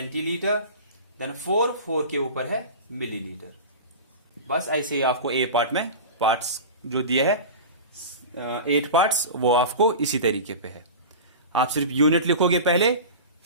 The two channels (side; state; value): both; inverted; correlation -0.31